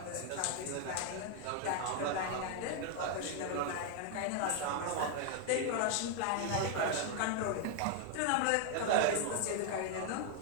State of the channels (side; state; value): both; different; correlation 0.00